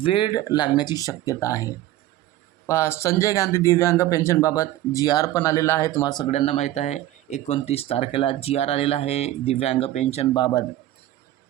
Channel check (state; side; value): quieter; left; 14.5 dB